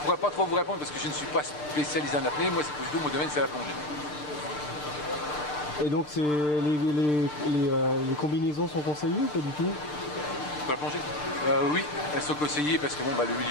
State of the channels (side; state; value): right; late; 6.7 ms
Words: pas trop vous répondre parce que je ne suis pas spécialisé en apnée. Moi, c'est plutôt mon domaine, c'est la plongée. Et donc les combinaisons sont conseillées ou pas du tout? Pour la plongée oui, elles sont conseillées parce que bon, le